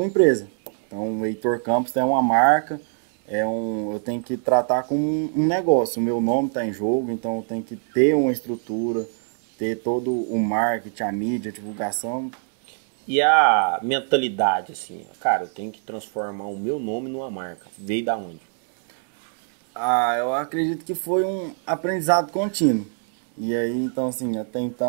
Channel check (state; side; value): silent; left; 56 dB below the other